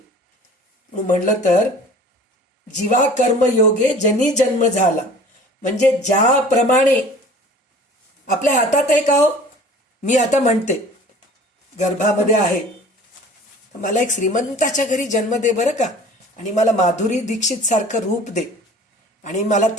म्हणलं तर जीवा कर्मयोगे जनी जन्म झाला, म्हणजे ज्याप्रमाणे आपल्या हातात आहे का हो. मी आता म्हणते गर्भामध्ये आहे, मला एक श्रीमंताच्या घरी जन्म दे बरं का, आणि मला माधुरी दीक्षित सारखं रूप दे, आणि मला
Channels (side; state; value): both; normal; correlation 0.46